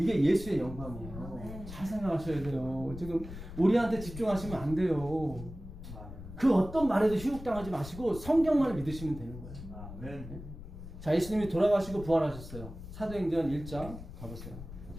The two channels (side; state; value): left; noise; rumble, 12 dB below the sound